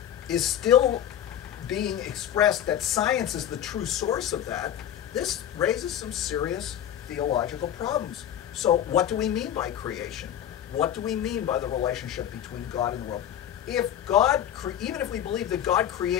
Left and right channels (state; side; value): quieter; right; 10.5 dB